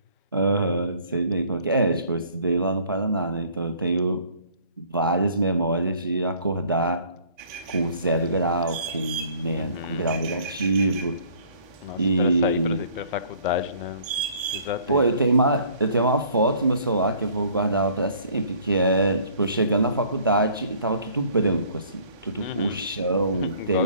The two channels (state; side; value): inverted; both; correlation -0.56